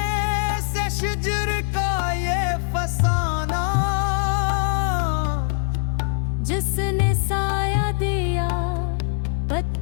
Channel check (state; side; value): silent; right; digital silence